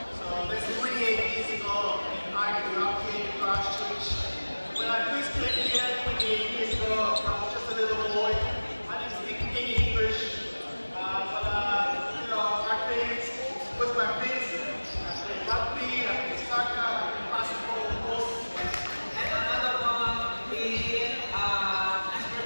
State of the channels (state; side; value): inverted; both; correlation -1.00